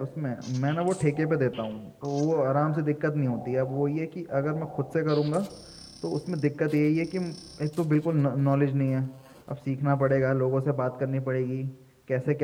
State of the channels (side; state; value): both; identical; correlation 1.00